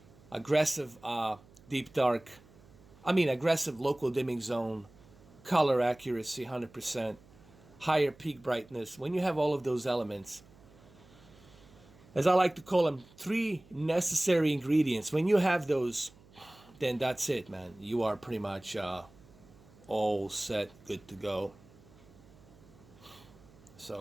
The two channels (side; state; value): right; noise; hum, 25 dB below the sound